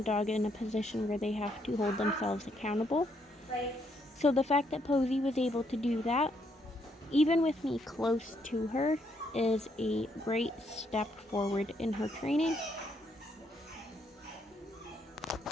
dog in a position where they have to hold themselves accountable. So the fact that Posey was able to do that, even with me close to her, is a great step forward in her training.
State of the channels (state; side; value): normal; both; correlation 0.73